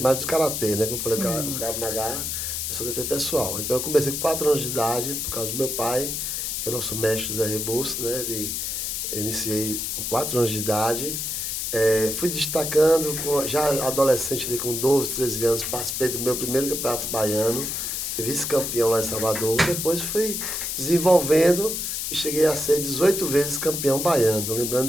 do karatê, né? Como eu falei, o Krav Maga, eu sou defesa pessoal. Então, eu comecei com 4 anos de idade, por causa do meu pai, que é o nosso mestre Zé Rebouças, né? Eu iniciei com 4 anos de idade. Fui destacando, já adolescente, ali, com 12, 13 anos, participei do meu primeiro campeonato baiano, fui vice-campeão lá em Salvador. Depois fui desenvolvendo e cheguei a ser 18 vezes campeão baiano.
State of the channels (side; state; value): left; noise; hiss, 2 dB below the sound